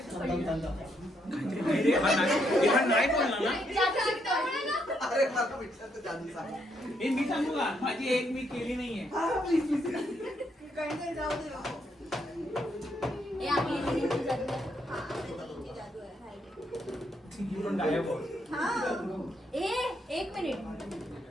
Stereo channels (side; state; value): both; normal; correlation 0.75